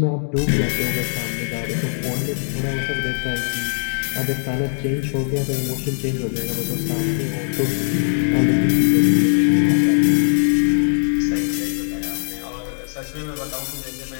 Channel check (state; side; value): silent; right; digital silence